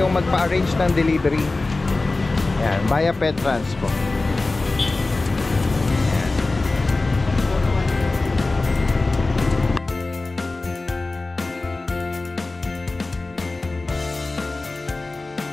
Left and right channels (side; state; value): right; quieter; 3.3 dB